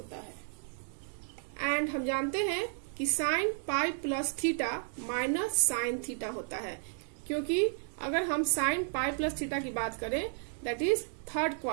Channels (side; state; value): left; silent; 56 dB below the other